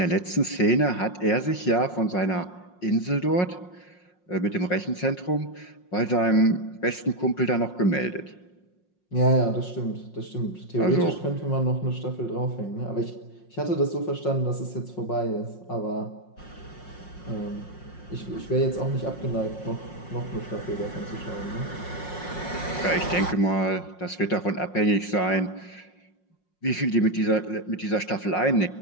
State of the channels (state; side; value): late; right; 5.5 ms